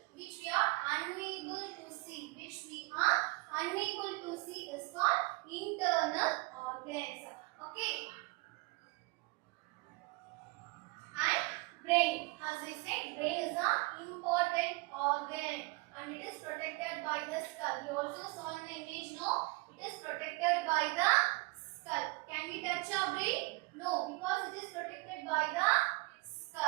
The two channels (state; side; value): quieter; left; 25.0 dB